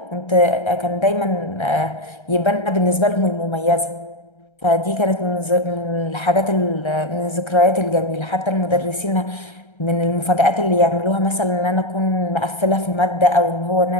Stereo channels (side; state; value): right; late; 1.3 ms